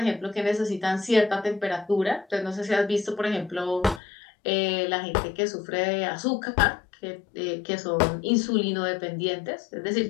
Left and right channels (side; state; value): right; drops out; at 4.0 s